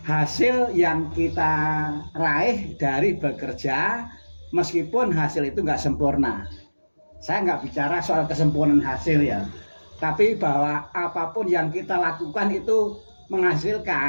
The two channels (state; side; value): inverted; both; correlation -1.00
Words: hasil yang kita raih dari bekerja, meskipun hasil itu nggak sempurna. Saya nggak bicara soal kesempurnaan hasil ya, tapi bahwa apapun yang kita lakukan itu